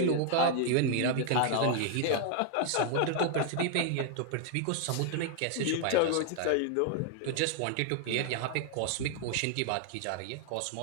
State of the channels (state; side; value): different; both; correlation 0.00